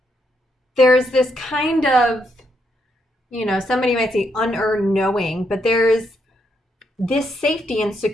this kind of, somebody might say unearned knowing, but there's this safety and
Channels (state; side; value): normal; both; correlation 0.77